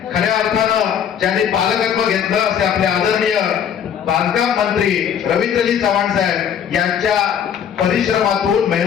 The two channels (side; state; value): right; quieter; 8.4 dB